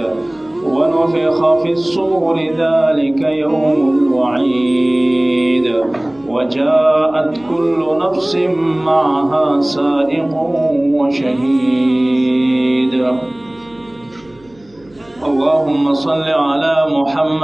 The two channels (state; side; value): noise; right; hum, 30 dB below the sound